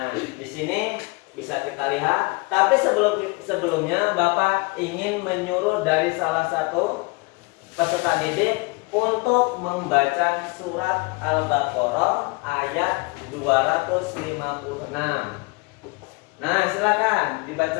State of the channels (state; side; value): quieter; right; 27.1 dB